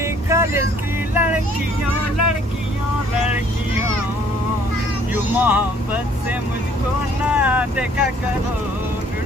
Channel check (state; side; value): normal; both; correlation 0.60